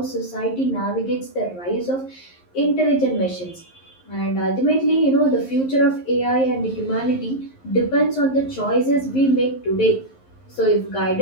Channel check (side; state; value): right; late; 11 ms